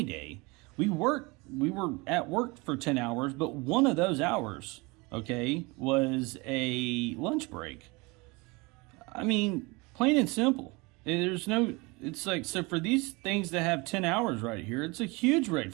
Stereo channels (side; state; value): left; quieter; 25.9 dB